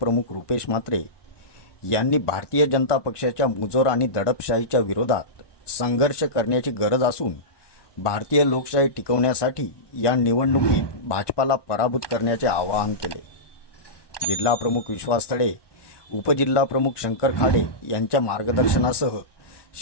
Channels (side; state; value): right; late; 1.2 ms